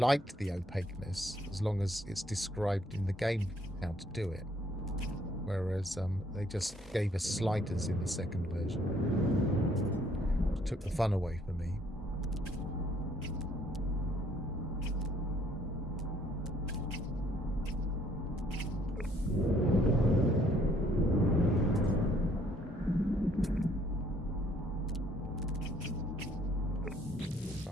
the opaqueness, as long as it's described in the game how to do it. Whereas they just gave us sliders in the second version, which took the fun away for me. If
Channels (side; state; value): both; normal; correlation 0.65